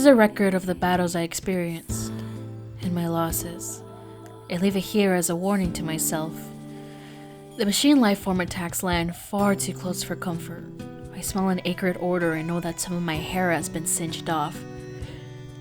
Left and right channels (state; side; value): identical; both; correlation 1.00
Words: a record of the battles I experienced, and my losses. I leave it here as a warning to myself. The machine lifeform attacks land far too close for comfort. I smell an acrid odor and know that some of my hair has been singed off.